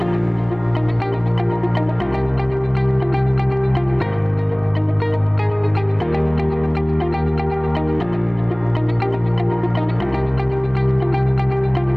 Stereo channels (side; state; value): left; noise; rumble, 20 dB below the sound